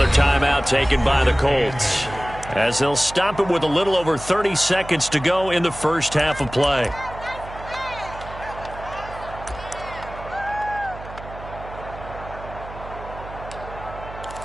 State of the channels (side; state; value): right; noise; hum, 14 dB below the sound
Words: timeout taken by the Colts, as they'll stop it with a little over 30 seconds to go in the first half of play.